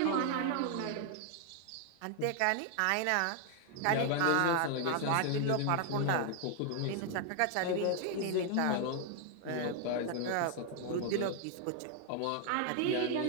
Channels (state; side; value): different; both; correlation 0.00